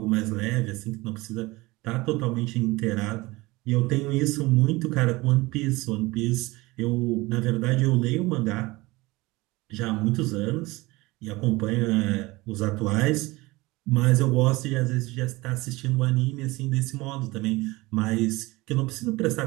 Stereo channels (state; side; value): quieter; left; 21.6 dB